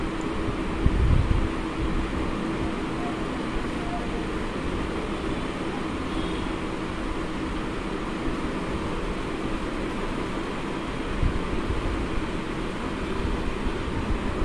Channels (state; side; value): identical; both; correlation 1.00